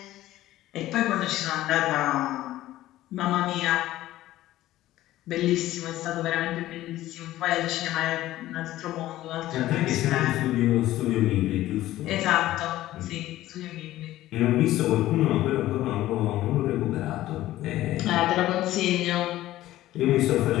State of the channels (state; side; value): quieter; right; 15.1 dB